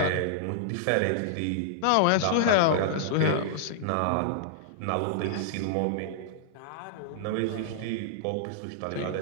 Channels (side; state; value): both; different; correlation -0.01